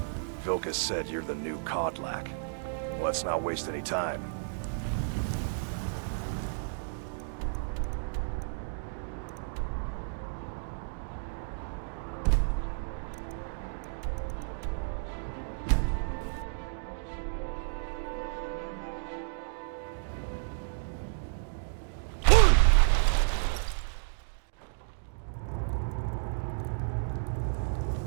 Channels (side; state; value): left; silent; digital silence